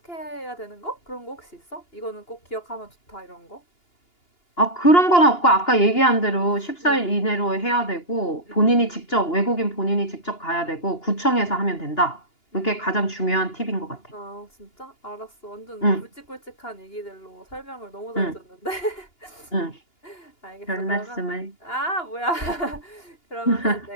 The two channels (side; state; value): right; late; 2.9 ms